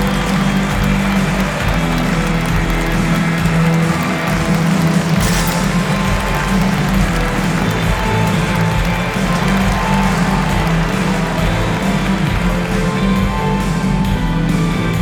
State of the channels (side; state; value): both; identical; correlation 1.00